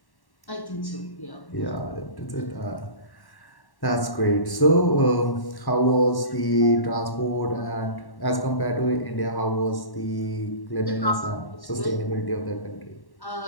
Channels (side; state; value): right; late; 1.1 ms